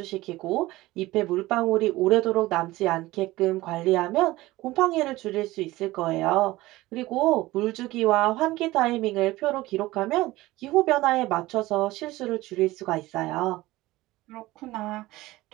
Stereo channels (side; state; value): left; quieter; 18.3 dB